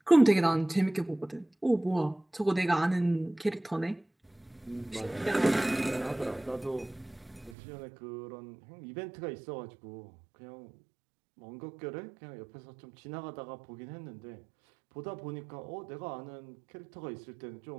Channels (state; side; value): drops out; left; at 7.6 s